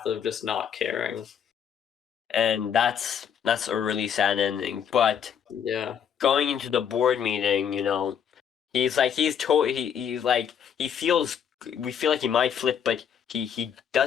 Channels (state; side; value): quieter; right; 8.1 dB